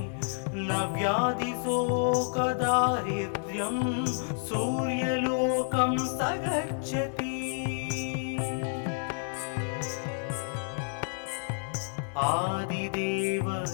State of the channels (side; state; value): right; silent; digital silence